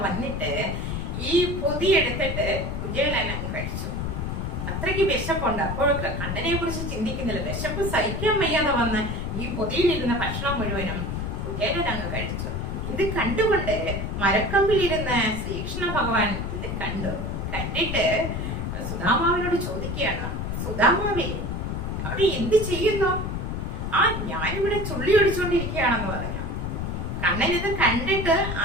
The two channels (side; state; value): left; noise; rumble, 3 dB below the sound